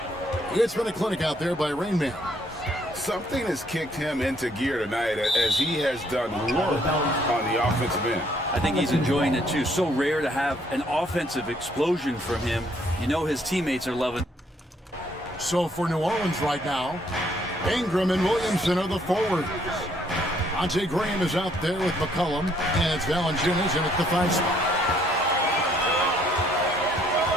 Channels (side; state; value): both; normal; correlation 0.67